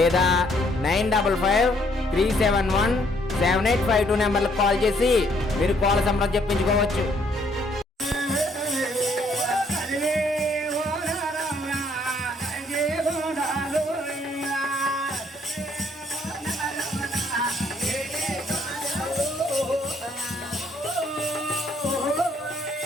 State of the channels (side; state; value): both; normal; correlation 0.67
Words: 9553717852 నెంబర్లకు కాల్ చేసి మీరు కోల సంబరం చెప్పించుకోవచ్చు.